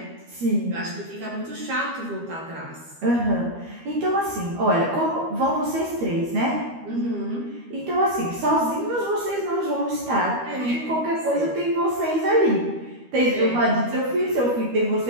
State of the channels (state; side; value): late; left; 13 ms